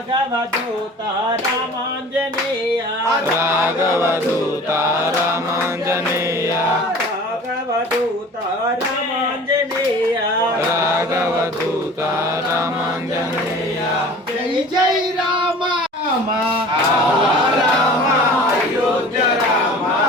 दूत रामांजनेय రాఘవదూత రామాంజనేయ राघव दूत रामांजनेय రాఘవదూత రామాంజనేయ జై జై రామ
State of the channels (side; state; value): both; normal; correlation 0.43